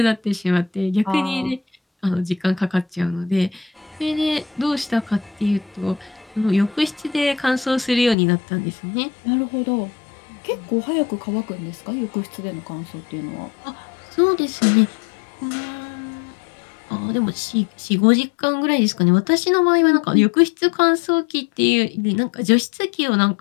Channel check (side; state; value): right; drops out; at 8.2 s